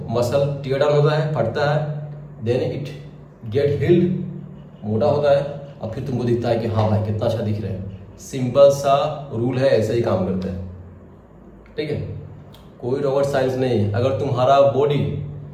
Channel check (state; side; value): identical; both; correlation 1.00